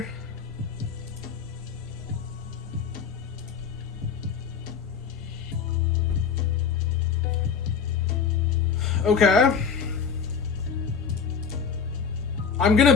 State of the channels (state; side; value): quieter; right; 6.5 dB